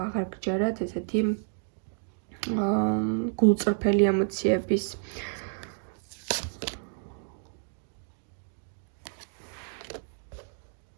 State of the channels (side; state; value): left; silent; digital silence